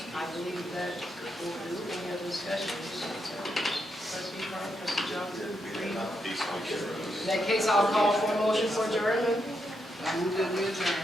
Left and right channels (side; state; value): both; normal; correlation 0.81